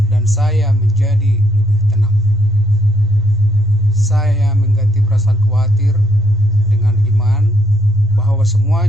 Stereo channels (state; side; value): noise; left; rumble, 24 dB below the sound